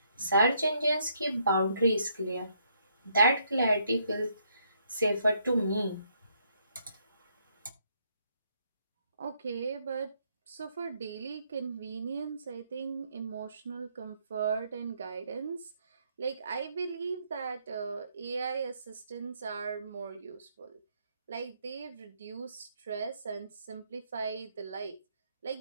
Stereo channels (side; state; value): both; inverted; correlation -0.72